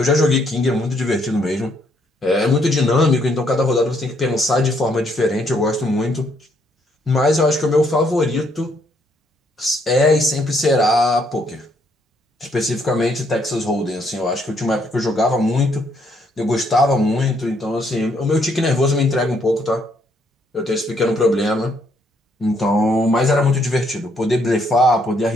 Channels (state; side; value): normal; both; correlation 0.71